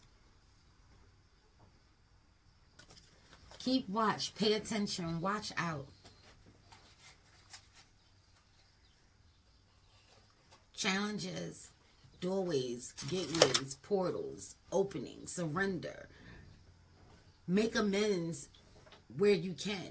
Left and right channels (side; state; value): both; identical; correlation 1.00